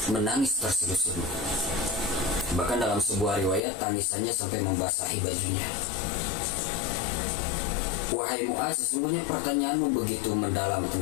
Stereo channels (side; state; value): right; drops out; at 3.6 s